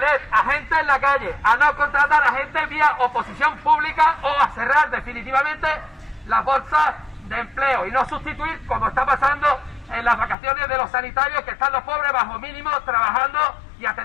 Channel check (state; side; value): drops out; right; at 10.4 s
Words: a gente en la calle, a no contratar a gente vía oposición pública o a cerrar definitivamente las bolsas de empleo y no sustituir, como está pasando en las vacaciones de los sanitarios, que están los pobres bajo mínimo trabajando y